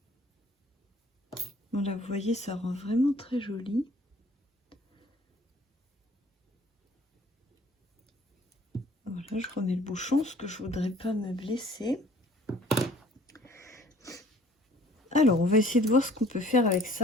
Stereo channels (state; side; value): normal; both; correlation 0.54